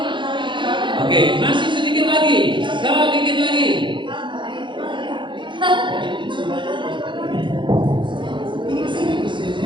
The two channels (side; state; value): left; late; 0.23 ms